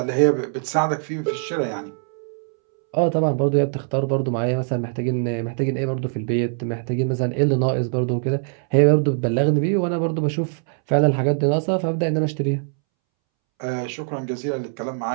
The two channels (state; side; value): silent; left; 64 dB below the other